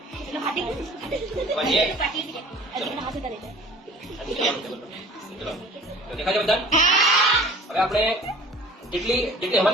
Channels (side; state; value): both; normal; correlation 0.46